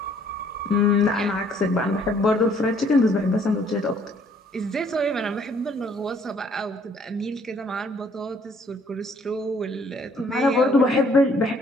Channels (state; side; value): normal; both; correlation 0.62